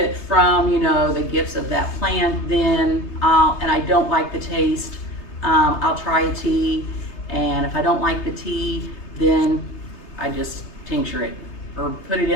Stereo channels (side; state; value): right; late; 3.3 ms